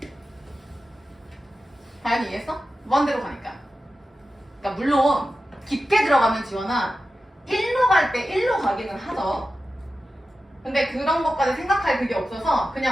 다현이 이해했어? 무한대로 가니까. 그러니까 물론 깊게 들어가면 지원아 1로 갈 때 1로 가기는 하죠. 근데 그런 것까지 생각할 그게 없어서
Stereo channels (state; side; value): normal; both; correlation 0.93